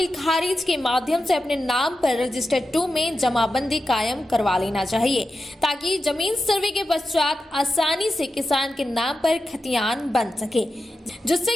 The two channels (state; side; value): normal; both; correlation 0.90